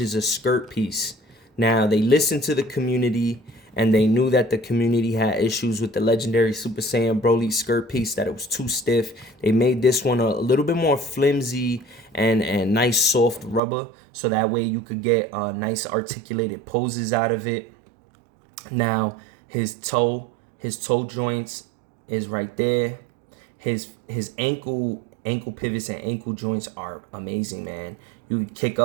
a skirt piece. Now, they listened to the community, and they knew that the community had issues with the legendary Super Saiyan Broly skirt piece, that it was too stiff. They made this one a little bit more flimsy and nice soft rubber, so that way you could get nice articulated poses out of it. Now, his toe joints is right there. His ankle pivots and ankle joints are amazing, man. You kick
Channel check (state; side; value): drops out; left; at 13.6 s